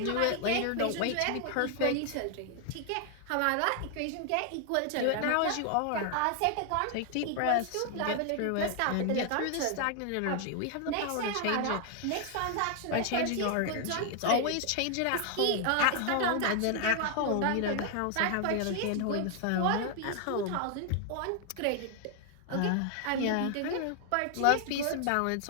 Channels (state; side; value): different; both; correlation 0.00